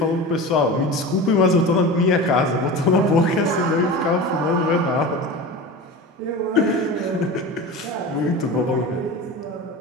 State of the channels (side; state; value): both; normal; correlation 0.30